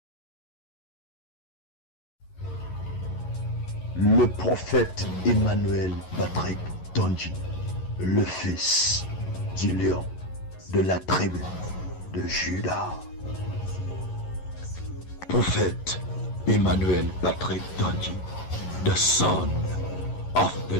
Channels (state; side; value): late; right; 11 ms